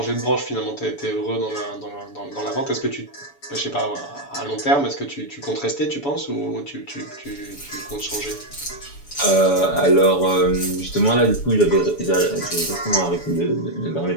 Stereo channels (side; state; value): right; late; 7.0 ms